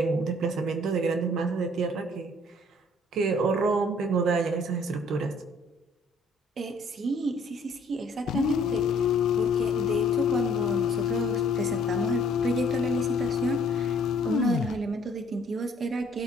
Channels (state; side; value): normal; both; correlation 0.59